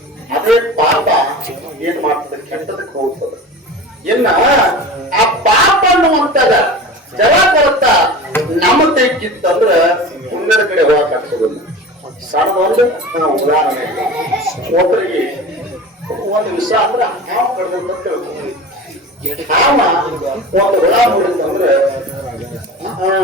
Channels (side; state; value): both; normal; correlation 0.34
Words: ಅದೇ ಪಾಪ ಏನ್ ಮಾಡ್ತದೆ ಕೆಟ್ಟದಕ್ಕೆ ಹೋಗ್ತದೆ ಇನ್ನ ಆ ಪಾಪ ಅನ್ನುವಂತದ ಜಲ ಕೊರತ ನಮ್ಮ ತೆಗಿತ್ತಂದ್ರ ಪುಣ್ಯದ ಕಡೆ ಹೋಗಕ್ ಆಗ್ತದಿಲ್ಲ ಸಣ್ಣದೊಂದು ಉದಾಹರಣೆ ಒಬ್ಬರಿಗೆ ಒಂದು ವಿಷ ಅಂದ್ರ ಹಾವು ಕಡ್ದಂತ ತಿಳ್ಕೊಂಡು ಹಾವ ಒಂದು ಹುಳ ನೋಡಿದಂದ್ರೆ